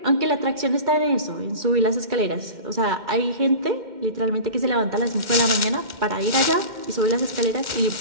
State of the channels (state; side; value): late; left; 2.1 ms